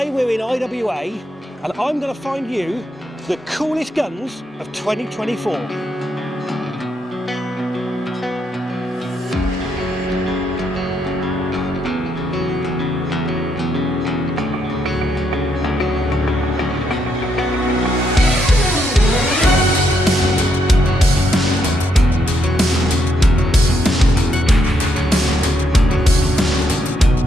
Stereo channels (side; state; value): both; normal; correlation 0.77